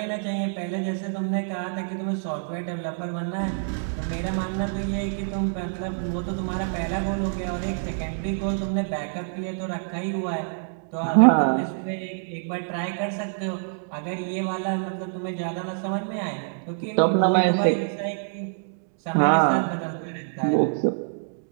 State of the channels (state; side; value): silent; left; digital silence